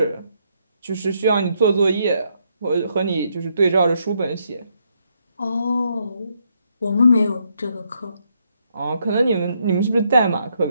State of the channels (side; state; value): both; inverted; correlation -0.75